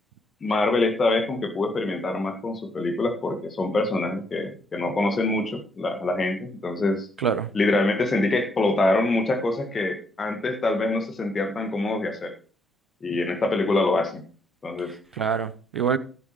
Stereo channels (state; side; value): normal; both; correlation 0.73